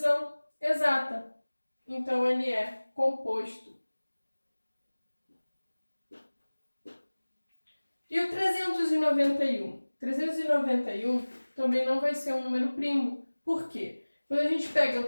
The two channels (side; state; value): both; inverted; correlation -1.00